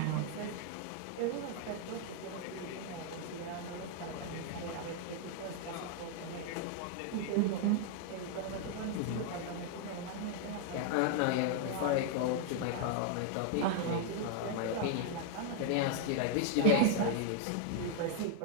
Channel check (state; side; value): different; both; correlation 0.00